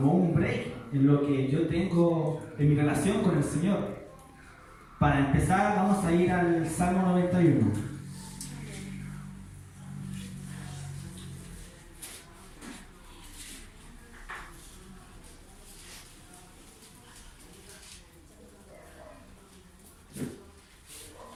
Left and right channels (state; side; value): identical; both; correlation 1.00